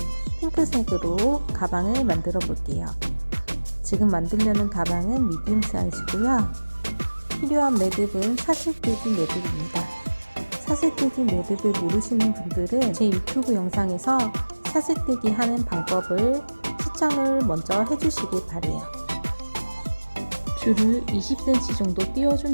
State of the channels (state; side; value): inverted; both; correlation -1.00